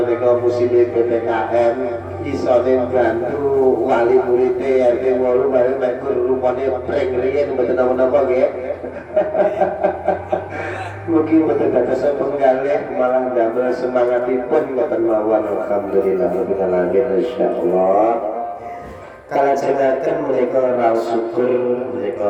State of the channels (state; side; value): identical; both; correlation 1.00